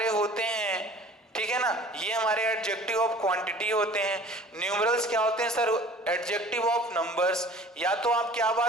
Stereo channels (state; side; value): normal; both; correlation 0.47